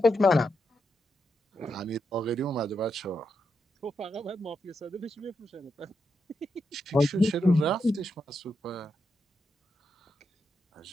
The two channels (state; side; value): normal; both; correlation 0.84